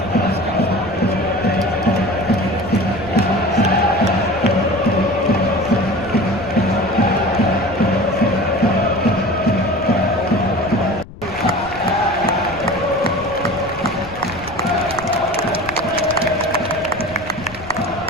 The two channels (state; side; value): noise; left; rumble, 16 dB below the sound